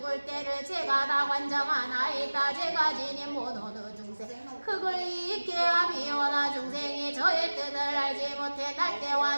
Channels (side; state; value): both; inverted; correlation -1.00